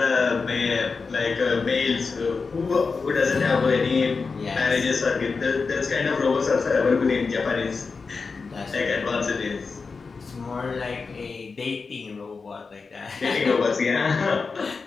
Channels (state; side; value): quieter; right; 4.6 dB